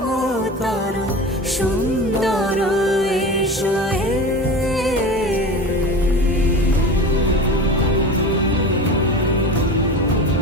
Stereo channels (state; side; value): normal; both; correlation 0.31